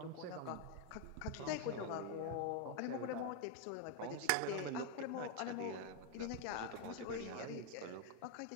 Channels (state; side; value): different; both; correlation 0.01